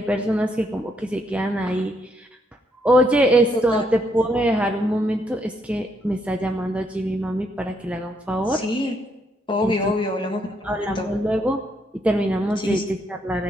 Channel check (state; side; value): normal; both; correlation 0.74